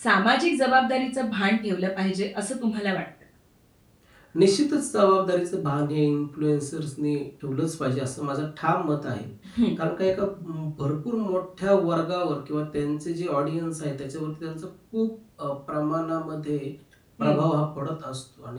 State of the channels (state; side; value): identical; both; correlation 1.00